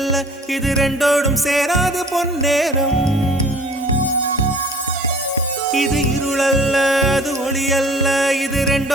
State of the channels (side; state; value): both; normal; correlation 0.49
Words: இது ரெண்டோடும் சேராத பொன்னேரம். இது இருளல்ல, அது ஒளி அல்ல, இது